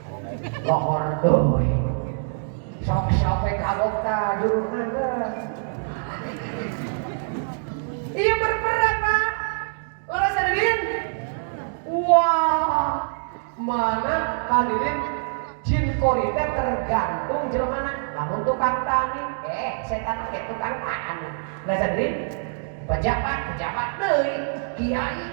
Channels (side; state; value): left; silent; digital silence